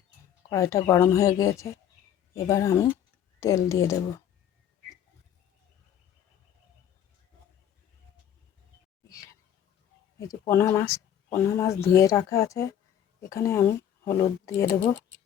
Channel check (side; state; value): right; quieter; 9.9 dB